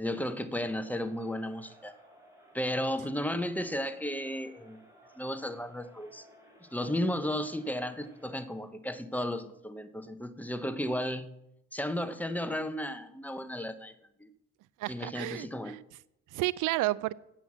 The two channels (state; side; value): normal; both; correlation 0.62